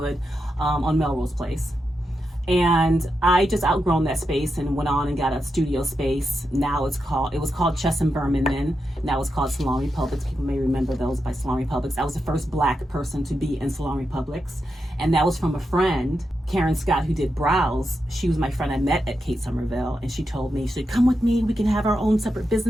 on Melrose Place. And I just outgrown that space and went on and got a studio space. Now it was called Chess and Berman then. Now it's called Salon Republics. People may remember those by Salon Republics. I was the first Black person to be in Salon Republics. And that was from a friend, Karen Scott, who did brows. She was my friend I met at Kate Somerville. And she told me, she said, come with me. We can have our own separate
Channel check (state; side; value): normal; both; correlation 0.87